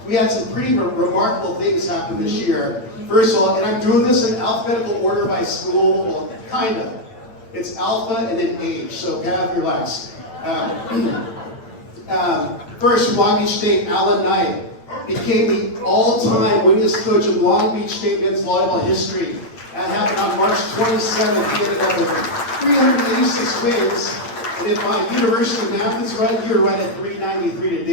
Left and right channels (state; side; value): late; right; 8.8 ms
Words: we had some pretty remarkable things happen this year. First of all, and I'm doing this in alphabetical order by school, well, kind of. It's alpha and then age, so have your relax. First, Long Beach State, Alan Knight became the all-time winningest coach of Long Beach State men's volleyball history. That happened on March 27th. He ended up with 386 wins. And if my university math is right, you're right at 393 to